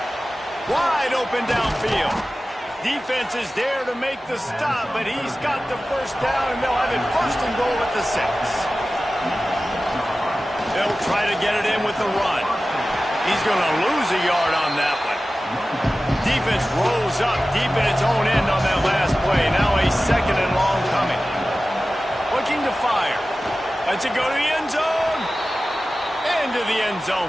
Wide open downfield. Defense is there to make the stop, but he's got the first down, and they'll have it 1st and goal at the 6. They'll try to get it in with the run. He's going to lose a yard on that one. Defense rolls up deep in its own end on that last play. Now a 2nd and long coming. Looking to fire. Lets it go to the end zone. Into the end zone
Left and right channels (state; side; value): normal; both; correlation 0.95